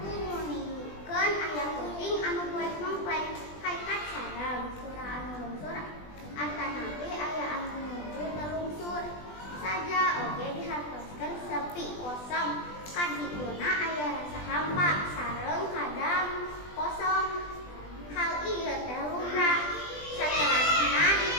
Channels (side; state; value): right; late; 20 ms